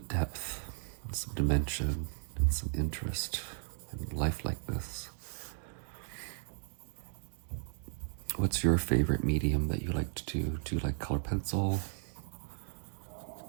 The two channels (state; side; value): silent; left; digital silence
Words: depth and some dimension and some interest and lifelikeness. What's your favorite medium that you like to do? Do you like color pencil?